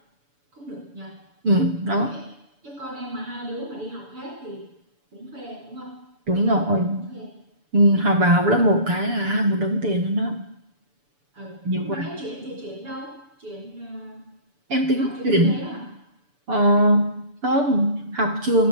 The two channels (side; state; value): left; late; 6.9 ms